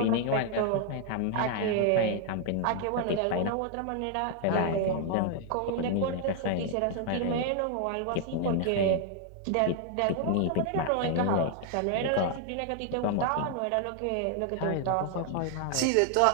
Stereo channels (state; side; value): different; both; correlation 0.00